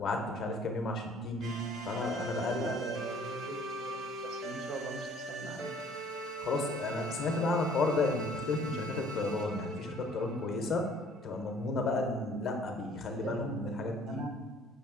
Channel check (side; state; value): both; normal; correlation 0.55